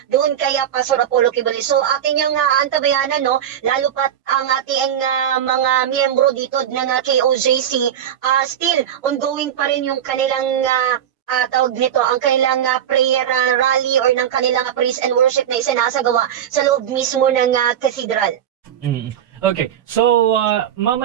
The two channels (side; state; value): left; quieter; 9.9 dB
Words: doon kaya Pastor Apollo Kibuloy. So atin yung antabayanan, no, lalo pat ang ating mga miyembro dito ng KOJC, still ongoing pa rin yung kanilang tawag nito, ang kanilang prayer rally or ng kanilang praise and worship na isinasagawa sa loob mismo ng cathedral. Okay, so